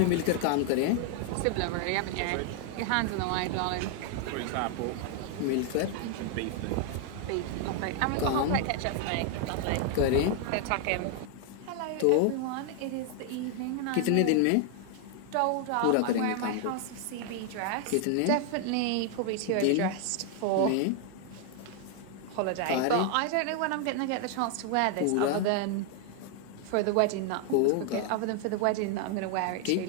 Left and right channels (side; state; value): both; different; correlation 0.00